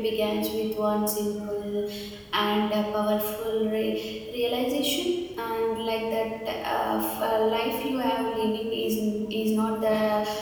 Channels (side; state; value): both; identical; correlation 1.00